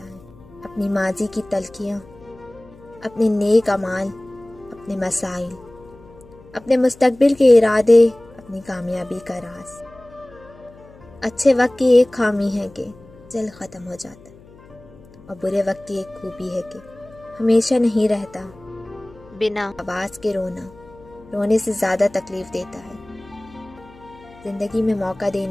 اپنی ماضی کی تلخیاں، اپنے نیک اعمال، اپنے مسائل، اپنے مستقبل کے ارادے، اپنی کامیابی کا راز۔ اچھے وقت کی ایک خامی ہے کہ جلد ختم ہو جاتا ہے، اور برے وقت کی ایک خوبی ہے کہ ہمیشہ نہیں رہتا۔ بنا آواز کے رونا رونے سے زیادہ تکلیف دیتا ہے۔ زندگی میں موقع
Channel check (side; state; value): left; noise; hum, 23 dB below the sound